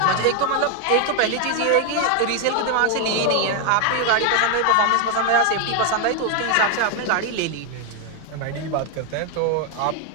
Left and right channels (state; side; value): different; both; correlation 0.00